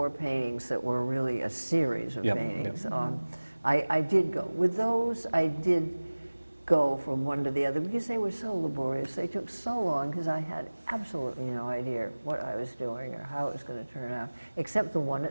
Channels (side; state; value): both; inverted; correlation -1.00